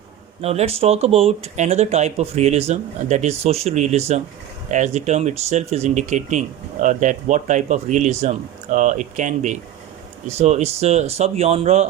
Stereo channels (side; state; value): left; quieter; 11.5 dB